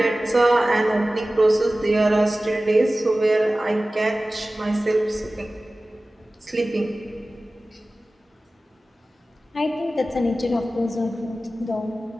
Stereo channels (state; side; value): normal; both; correlation 0.96